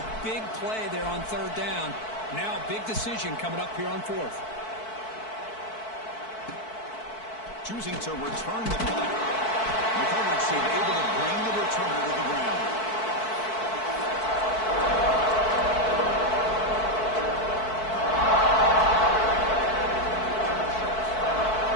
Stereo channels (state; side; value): late; right; 4.6 ms